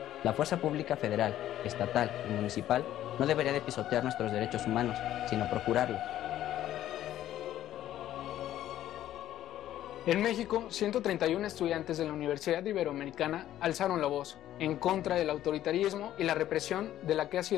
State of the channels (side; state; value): right; quieter; 12.6 dB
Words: La fuerza pública federal, estatal y municipal no debería de pisotear nuestros derechos humanos, sino procurarlos. En México, 131 estudiantes de la Universidad Iberoamericana alzaron la voz en contra del autoritarismo y la represión de la que ha